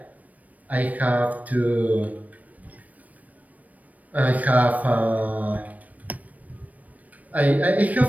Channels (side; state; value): left; late; 0.073 ms